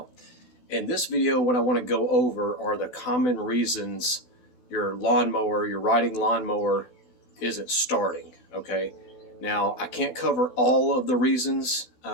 In this video, what I want to go over are the common reasons your lawnmower, your riding lawnmower, isn't starting. Okay. Now, I can't cover all of the reasons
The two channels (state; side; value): late; right; 16 ms